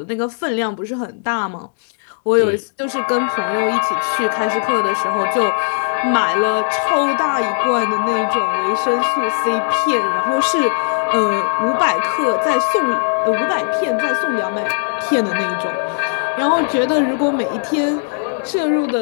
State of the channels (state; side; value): silent; right; 67 dB below the other